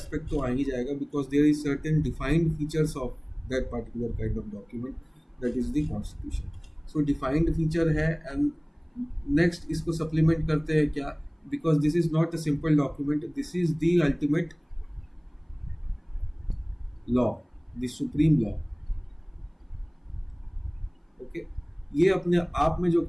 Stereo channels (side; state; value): both; identical; correlation 1.00